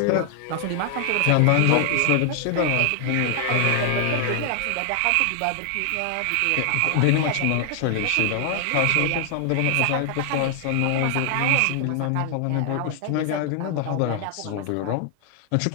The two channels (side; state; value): both; different; correlation 0.00